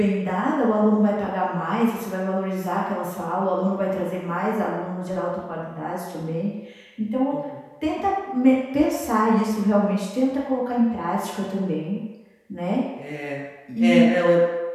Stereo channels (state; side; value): identical; both; correlation 1.00